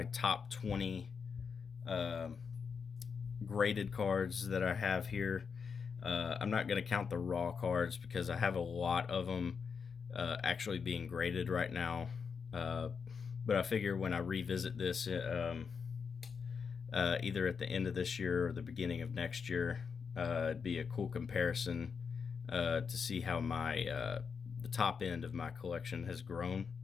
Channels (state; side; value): quieter; right; 6.0 dB